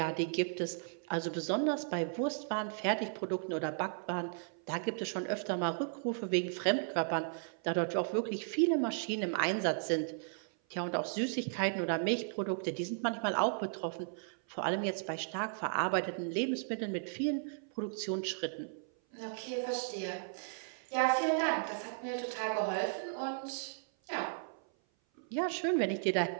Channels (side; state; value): left; silent; 54 dB below the other